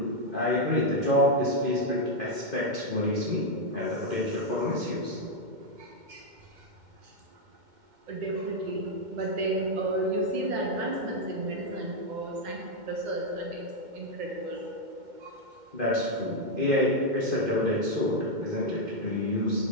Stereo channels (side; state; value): left; late; 2.1 ms